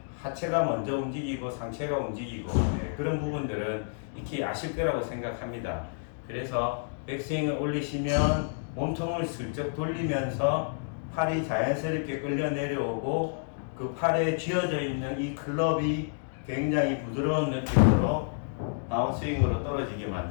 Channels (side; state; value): right; silent; digital silence